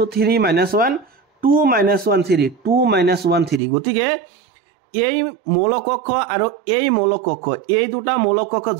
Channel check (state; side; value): drops out; left; at 3.6 s